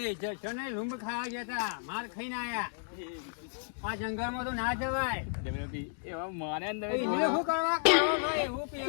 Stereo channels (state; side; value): silent; right; digital silence